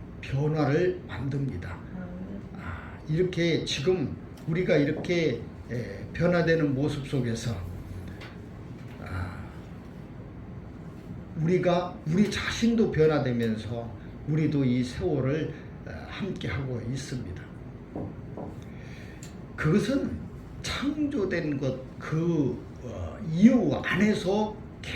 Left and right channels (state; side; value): identical; both; correlation 1.00